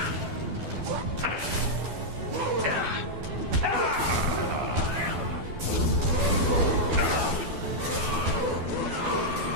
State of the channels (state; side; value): late; left; 12 ms